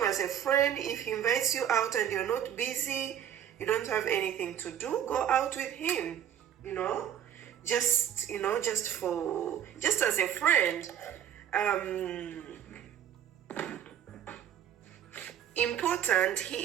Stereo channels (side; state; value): left; quieter; 10.0 dB